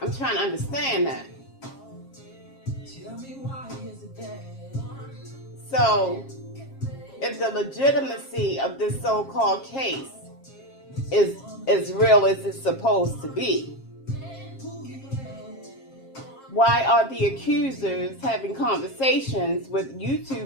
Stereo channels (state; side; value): late; right; 7.4 ms